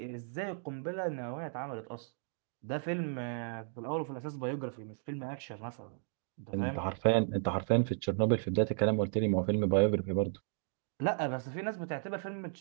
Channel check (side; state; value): left; silent; 55 dB below the other